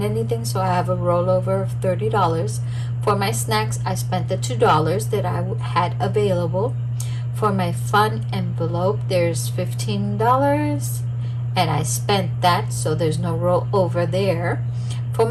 anything, so I have a rollover of $30. For my snacks, I spent the $2 that I had available. For my fun envelope, there's $15, and I spent that, so there's no rollover there. For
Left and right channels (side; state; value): both; identical; correlation 1.00